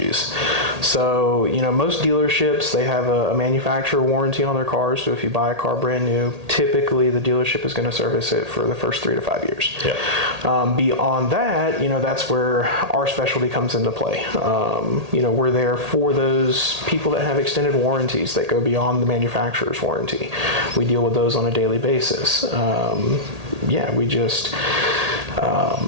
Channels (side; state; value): left; late; 1.8 ms